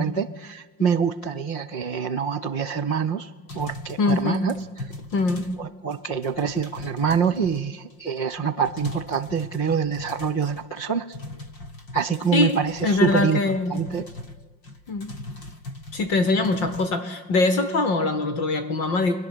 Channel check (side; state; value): right; late; 5.6 ms